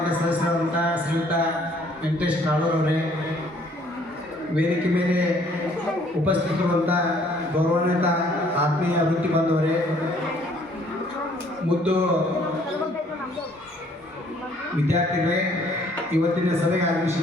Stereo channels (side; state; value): both; normal; correlation 0.61